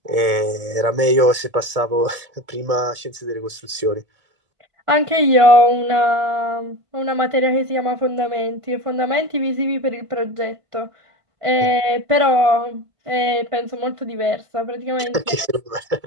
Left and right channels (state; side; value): late; left; 1.7 ms